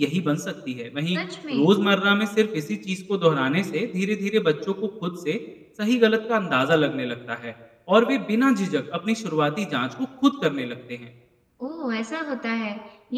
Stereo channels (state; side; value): identical; both; correlation 1.00